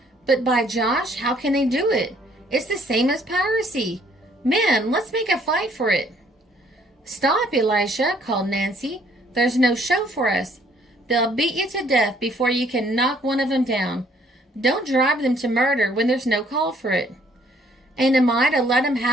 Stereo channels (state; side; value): normal; both; correlation 0.63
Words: "But by Josh, how can they do it? It's the same as piracy. Men, let's make a fight for it." "Stop, Elisha," called Nancy. "There's no show for us. They'll beat you to death before you can knock one of them down. Don't drive them to murder when there's no call for it." "And am I to let 'em